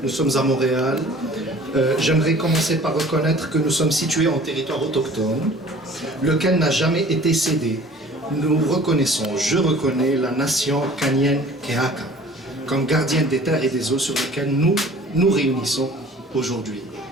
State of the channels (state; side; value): normal; both; correlation 0.48